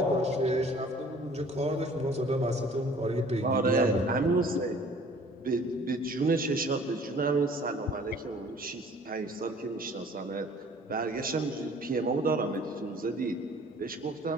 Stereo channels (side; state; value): both; normal; correlation 0.52